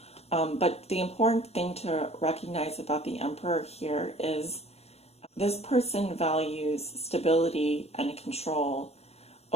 But the important thing to recognize about the Emperor here is this person values stability and control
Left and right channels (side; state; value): right; late; 0.30 ms